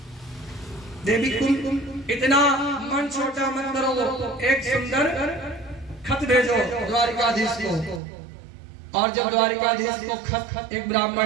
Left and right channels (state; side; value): drops out; left; at 8.0 s